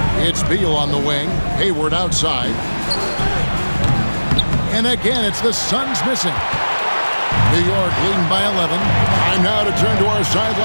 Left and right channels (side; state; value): both; inverted; correlation -1.00